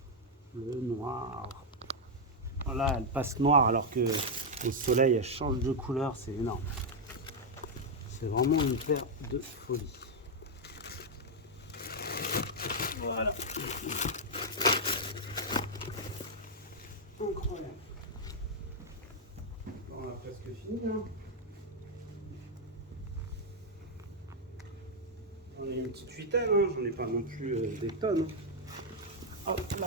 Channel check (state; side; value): normal; both; correlation -0.01